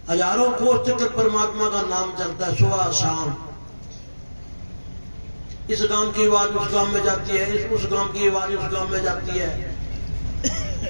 हजारों कोस चक्र परमात्मा का नाम चलता है सुबह शाम। इस गांव की आवाज उस गांव में जाती है, उस गांव की आवाज उस गांव में जाती है।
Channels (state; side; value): inverted; both; correlation -1.00